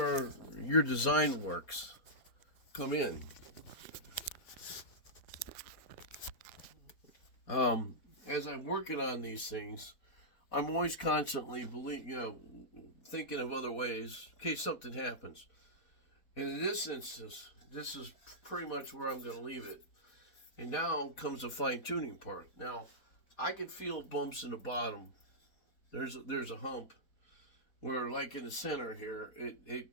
your design works come in. As I'm working on these things, I'm always constantly thinking of other ways in case something happens. And in this instance, this is pretty much where I'm going to leave it. And now comes the fine-tuning part. Now, I can feel bumps in the bottom. There's a hump where, like in the center here, it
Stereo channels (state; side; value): late; right; 4.1 ms